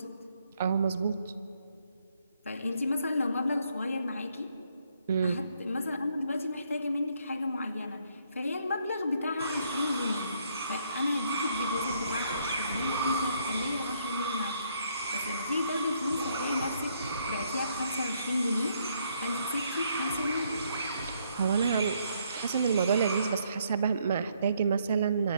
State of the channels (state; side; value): inverted; both; correlation -0.71